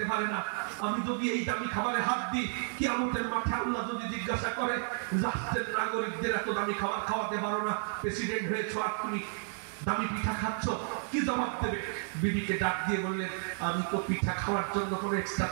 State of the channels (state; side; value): silent; left; 56 dB below the other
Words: পারে না। আমি যদি এই দামি খাবারে হাত দিই, কিয়ামতের মাঠে আল্লাহ যদি জিজ্ঞাসা করে, রাষ্ট্রের নাগরিকদের এত দামি খাবার খাওয়াতে পারো না, প্রেসিডেন্ট হয়েছো আর তুমি দামি পিঠা খাচ্ছ, কি জবাব দেবে? বিবিকে ডাক দিয়ে বললেন, আমি তো পিঠা খাওয়ার জন্য কোনো এক্সট্রা